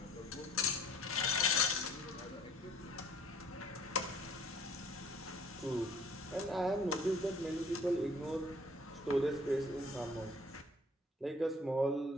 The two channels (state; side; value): normal; both; correlation 0.54